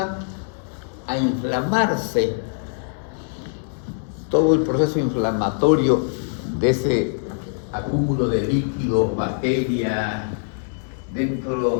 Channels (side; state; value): right; silent; digital silence